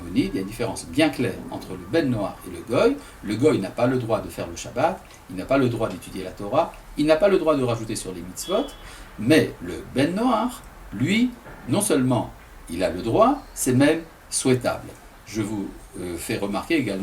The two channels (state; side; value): identical; both; correlation 1.00